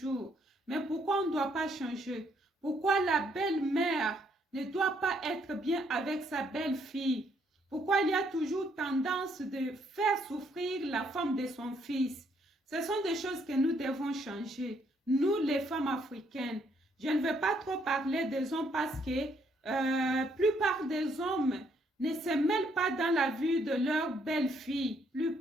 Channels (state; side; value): normal; both; correlation 0.70